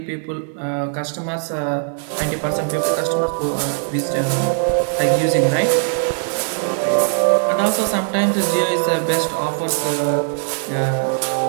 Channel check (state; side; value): silent; left; 66 dB below the other